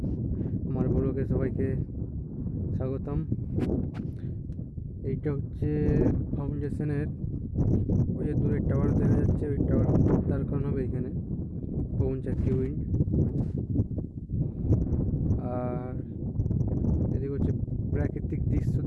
আমার ব্লগে সবাইকে স্বাগতম। এইটা হচ্ছে ফাউন্ডেশনের ওই যে দূরের টাওয়ার দেখা যাচ্ছে, ওই টাওয়ার তার কারণ হবে এখানে পবনচক্কি উইন্ড। আর এদিকে হচ্ছে প্রাকৃতিক দৃশ্য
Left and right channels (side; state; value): both; identical; correlation 1.00